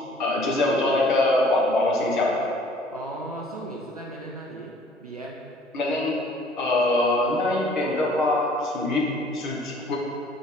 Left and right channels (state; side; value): normal; both; correlation 0.55